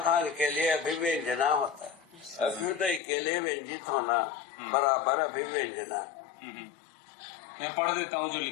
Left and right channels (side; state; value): right; drops out; at 3.0 s